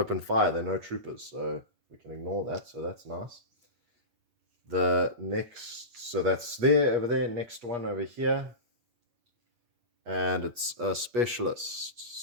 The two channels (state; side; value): late; left; 8.3 ms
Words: fire. There are no troopers, so we can ignore that. So that's nice. The next, so that's there, over there. Next one over here. And it's a specialist.